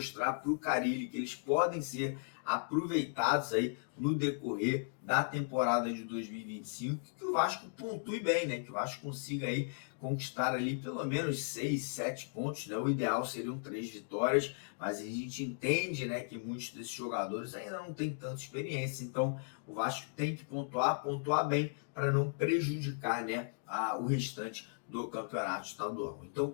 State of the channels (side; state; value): right; silent; digital silence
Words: para o Carille que eles podem ser aproveitados aí no decorrer da temporada de 2025, que o Vasco pontue bem, né, que o Vasco consiga aí conquistar ali pelo menos 6, 7 pontos, né? O ideal seriam 3 vitórias, mas a gente entende, né, que muitos desses jogadores ainda não têm tanta experiência, então o Vasco tem que pontuar bem para não prejudicar, né, o restante do campeonato estadual. Então,